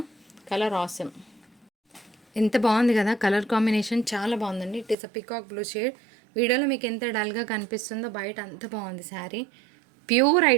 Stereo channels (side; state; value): left; drops out; at 5.0 s